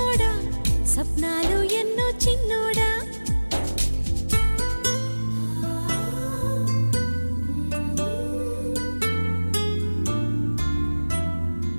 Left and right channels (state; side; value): inverted; both; correlation -1.00